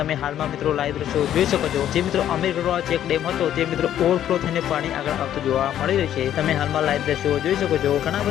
હાલમાં મિત્રો લાઈવ દ્રશ્યો જોઈ શકો છો। જે મિત્રો અમીરગઢવાળો ચેક ડેમ હતો તે મિત્રો ઓવરફ્લો થઈને પાણી આગળ આવતું જોવા મળી રહ્યું છે। તમે હાલમાં લાઈવ દ્રશ્યો જોઈ શકો છો। ઘણા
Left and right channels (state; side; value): quieter; right; 11.0 dB